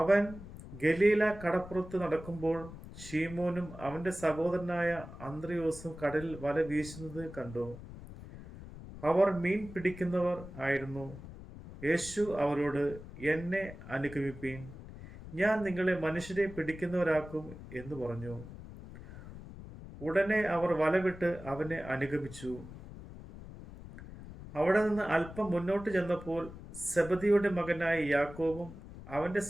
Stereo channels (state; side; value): noise; left; rumble, 14 dB below the sound